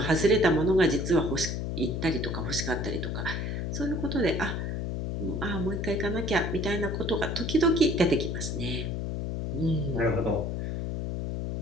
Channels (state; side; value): noise; left; hum, 2 dB below the sound